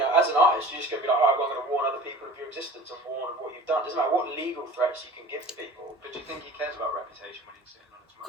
as an artist, you're just going to be like, alright, well, I'm going to warn other people of your existence and warn of what you've done. It doesn't matter what legal threats you can give to people. But do you think he cares about reputation when he's sitting on his Of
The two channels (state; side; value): normal; both; correlation 0.42